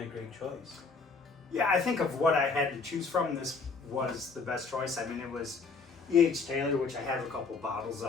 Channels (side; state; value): right; quieter; 4.6 dB